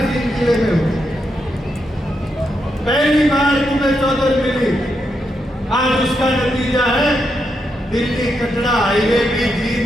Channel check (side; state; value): both; normal; correlation 0.82